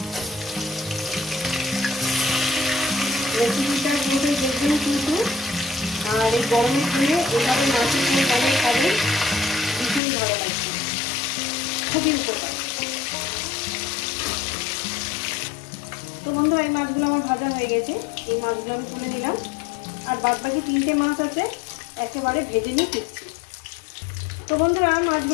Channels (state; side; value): drops out; right; at 10.0 s